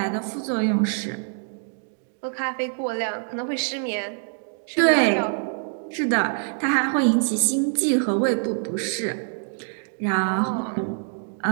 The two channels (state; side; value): silent; left; 62 dB below the other